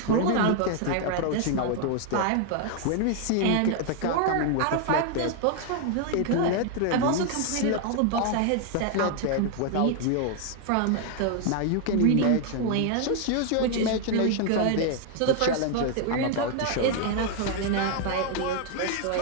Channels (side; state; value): both; different; correlation 0.00